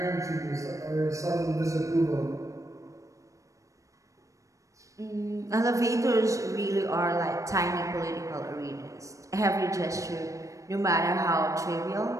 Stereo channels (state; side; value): late; left; 0.16 ms